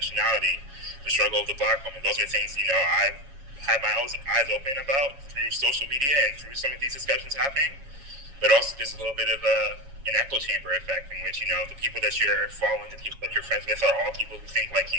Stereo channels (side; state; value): left; late; 7.2 ms